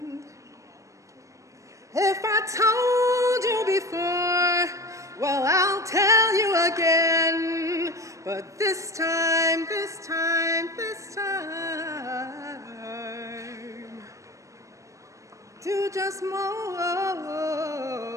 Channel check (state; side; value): late; left; 0.15 ms